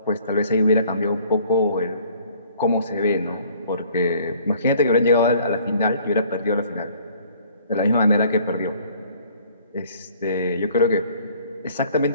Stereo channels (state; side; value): inverted; both; correlation -0.56